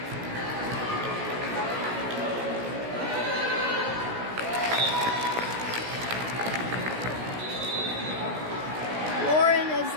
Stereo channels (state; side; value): late; left; 16 ms